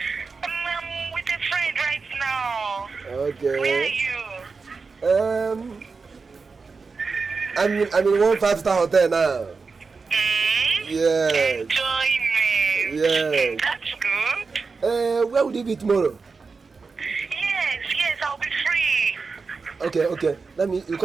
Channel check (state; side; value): quieter; left; 4.6 dB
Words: I'm with a friend right now. Okay. Where are you? I'm in one 5-star hotel now. Yes. Enjoyment. Yes. That's good. Where will you be tomorrow? Yes, I'll be free. Okay. You